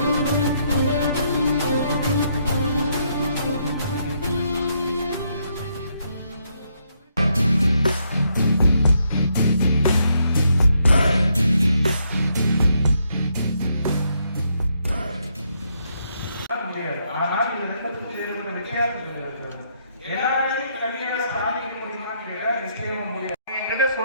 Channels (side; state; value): both; inverted; correlation -0.75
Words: ஆனால் இது ரெண்டுக்கும் வேறுபட்ட வித்தியாசங்கள் இருக்கிறது. எல்லாரையும் கல்வியால சாதிக்க முடியுமான்னு கேட்டா நிச்சயமா முடியாது. என்கிட்ட